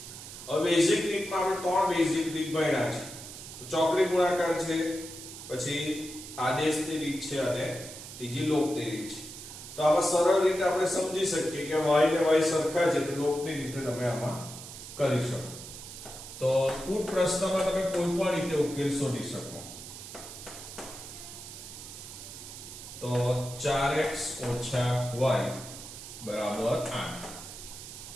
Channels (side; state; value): right; noise; hiss, 12 dB below the sound